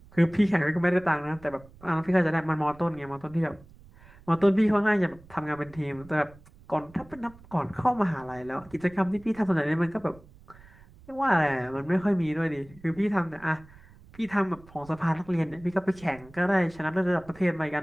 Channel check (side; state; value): right; noise; rumble, 23 dB below the sound